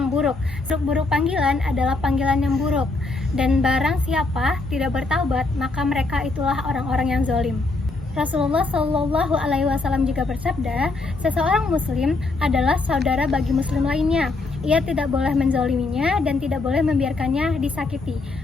buruk. Buruk panggilan adalah panggilan yang buruk. Dan barang siapa tidak bertaubat, maka mereka itulah orang-orang yang zalim." Rasulullah Shallallahu Alaihi Wasallam juga bersabda, "Seseorang Muslim adalah saudara bagi Muslim lainnya. Ia tidak boleh menzaliminya dan tidak boleh membiarkannya disakiti."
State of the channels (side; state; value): right; quieter; 3.5 dB